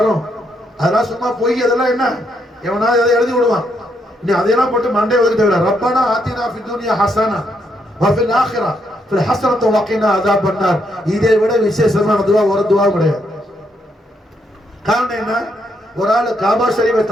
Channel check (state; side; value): normal; both; correlation 0.76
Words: அதெல்லாம் சும்மா போய் அதெல்லாம் என்ன எவனாவது அதை எழுதி விடுவான். நீ அதையெல்லாம் போட்டு மண்டே ஒதுக்க தேவையில்ல. ரப்பனா ஆத்தினா ஃபித் துன்யா ஹஸனா வ ஃபில் ஆখিরা ஃபில் ஹஸனத்து வ கினா அஸாபன் நார். இதை விட விசேஷமான துவா ஒரு துவா கிடையாது. காரணம் என்ன? ஒரு ஆள் காபா ஷரீஃபை